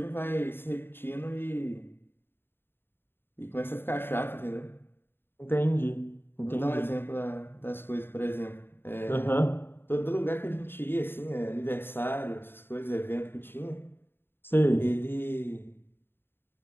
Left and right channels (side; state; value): right; late; 0.10 ms